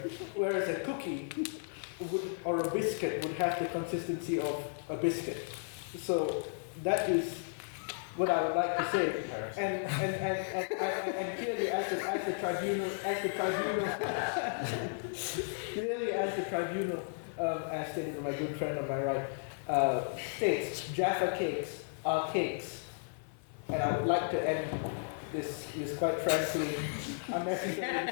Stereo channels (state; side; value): silent; right; 55 dB below the other